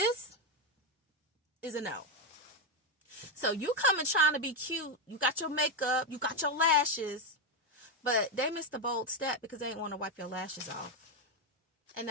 is a no. So you coming trying to be cute, you got your makeup, you got your lashes, but they missed the bold step because they didn't want to wipe your lashes off. And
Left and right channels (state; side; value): normal; both; correlation 0.06